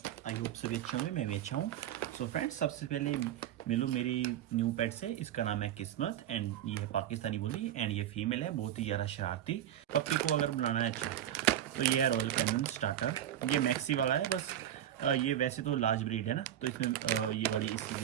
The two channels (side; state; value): left; quieter; 11.4 dB